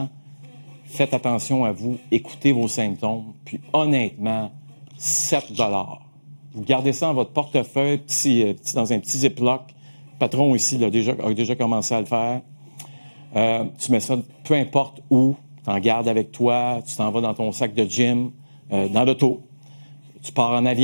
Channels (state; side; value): inverted; both; correlation -1.00